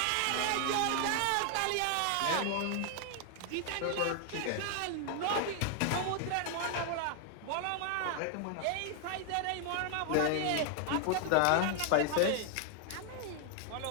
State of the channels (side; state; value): both; different; correlation 0.00